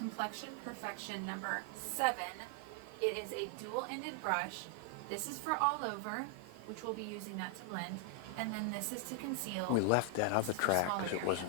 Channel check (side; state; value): both; different; correlation 0.00